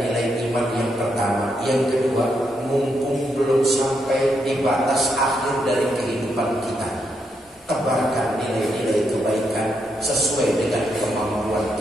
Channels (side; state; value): both; normal; correlation 0.79